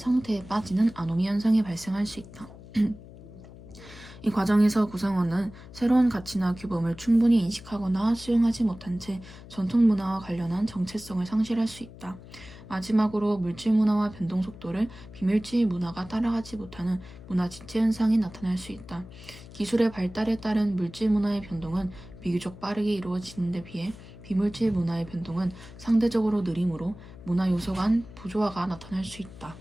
빠지는 아노미 현상이 발생할 수 있다. 이 과정에서 구성원은 새로운 가치나 규범을 충분히 인식하거나 수용하지 못한 채 전통 문화와 관련한 정체성을 상실할 수 있다. 마지막으로 물질 문화와 변동 속도를 비물질 문화가 따라가지 못하는 문화 지체 현상이 나타날 수 있다. 기술의 발달에 따른 물질 문화의 변동은 비교적 빠르게 이루어지는 데 비해 비물질 문화의 변동은 상대적으로 느리므로 문화 요소 간 부조화가 나타날 수 있다.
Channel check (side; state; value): left; noise; hum, 17 dB below the sound